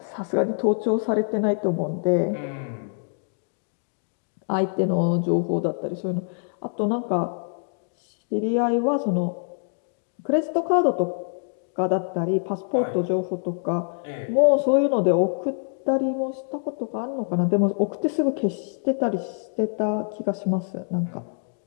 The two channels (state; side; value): silent; right; 61 dB below the other